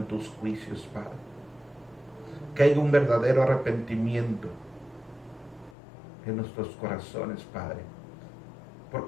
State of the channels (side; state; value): right; drops out; at 5.8 s